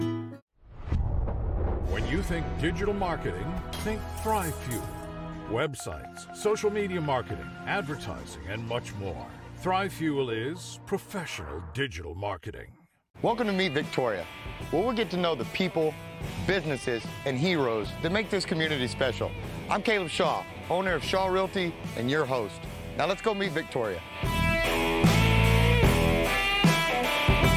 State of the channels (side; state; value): both; identical; correlation 1.00